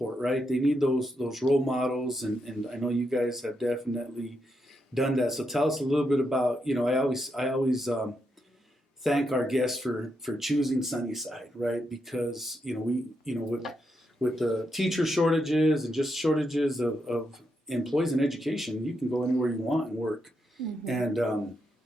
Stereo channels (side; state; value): both; normal; correlation 0.82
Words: right? They need those role models, and I know you guys have definitely done that. So tell us a little bit about, you know, I always thank our guests for choosing Sunnyside, right? Because, you know, we, you know, with the teacher shortages and just shortages of employees in education, you can go anywhere you want and work, and